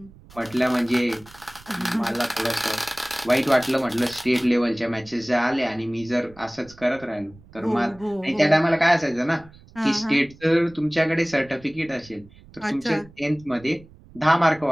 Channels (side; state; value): right; noise; rumble, 24 dB below the sound